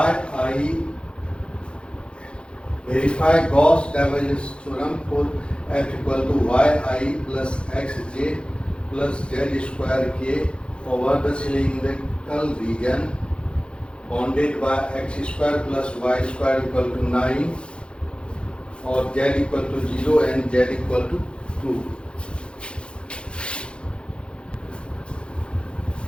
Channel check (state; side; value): late; right; 0.056 ms